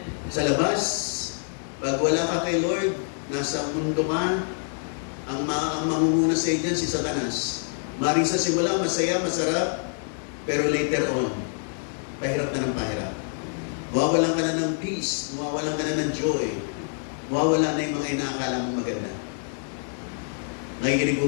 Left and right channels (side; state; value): right; silent; 61 dB below the other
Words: Sa labas, pag wala ka kay Lord, nasa mundo ka, ang mangunguna sa dyan, si Satanas. Maring sa simula, masaya, masarap, pero later on, pahirap na ng pahirap. Mawawalan ka na ng peace, mawawalan ka na ng joy, mawawala na yung mga inaakala mong maganda. Nakikinig